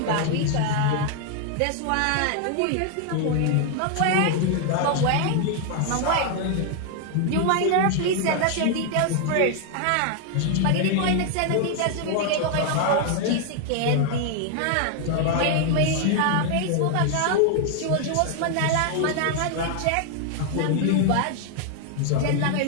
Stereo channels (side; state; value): both; different; correlation 0.00